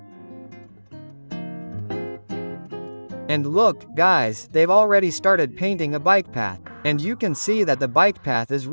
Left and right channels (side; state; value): both; inverted; correlation -1.00